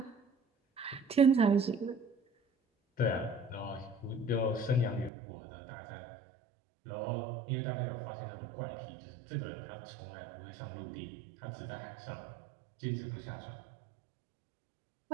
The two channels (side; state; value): left; drops out; at 5.1 s